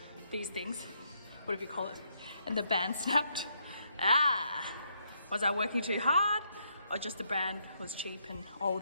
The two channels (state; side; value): inverted; both; correlation -0.76